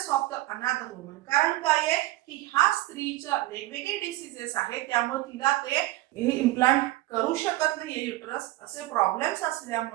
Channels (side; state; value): left; quieter; 17.6 dB